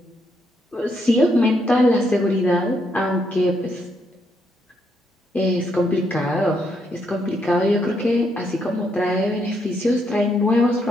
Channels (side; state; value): both; normal; correlation 0.76